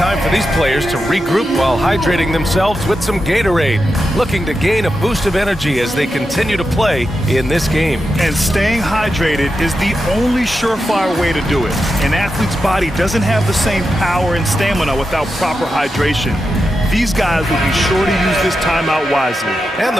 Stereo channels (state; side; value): normal; both; correlation 0.89